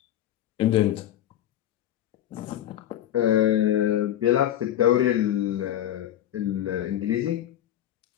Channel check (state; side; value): quieter; right; 11.8 dB